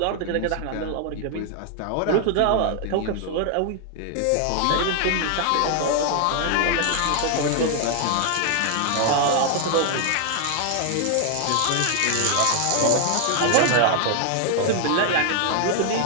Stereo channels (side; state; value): both; different; correlation 0.00